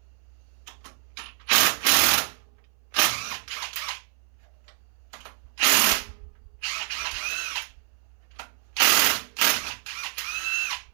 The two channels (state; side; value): silent; left; 60 dB below the other